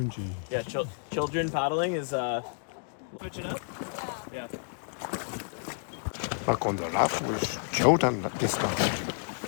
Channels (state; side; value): silent; right; digital silence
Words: Yeah, children paddling is switch it up. Yeah. Back on the raft with Jordan this time.